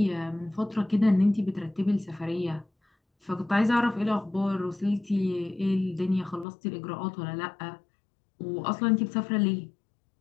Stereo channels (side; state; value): right; drops out; at 6.5 s